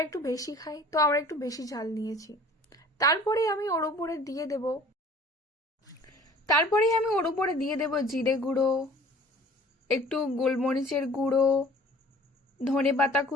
একটু বেশি খাই, তো আমরা একটু বেশি ঝাল নিয়েছি। তারপরেই আমি ওর উপরে দিয়ে দেব জিরে গুঁড়ো, একটু গোলমরিচের গুঁড়ো, ধনে পাতা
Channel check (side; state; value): both; normal; correlation 0.48